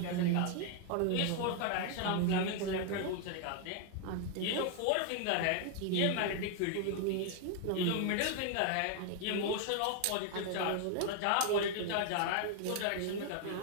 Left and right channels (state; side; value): different; both; correlation 0.00